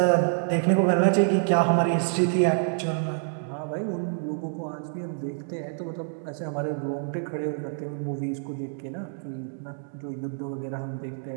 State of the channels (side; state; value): left; silent; digital silence